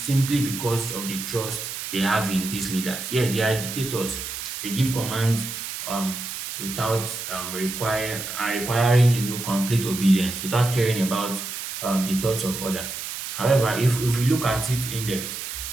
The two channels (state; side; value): noise; right; hiss, 7 dB below the sound